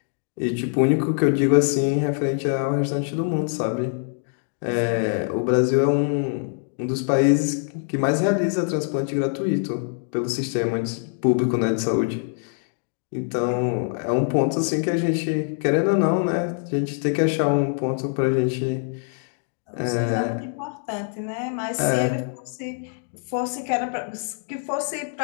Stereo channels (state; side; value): silent; right; 63 dB below the other